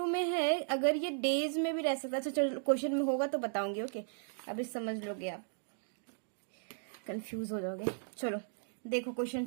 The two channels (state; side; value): silent; left; digital silence